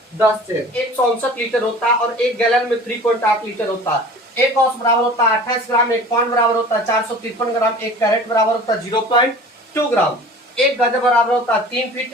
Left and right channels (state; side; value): normal; both; correlation 0.42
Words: 10 चैन। 159 लीटर होता है, और एक गैलन में 3.8 लीटर होता है। एक औंस बराबर होता है 28 ग्राम। एक पाउंड बराबर होता है 453 ग्राम। एक कैरेट बराबर होता है 0.2 ग्राम। एक गज बराबर होता है 3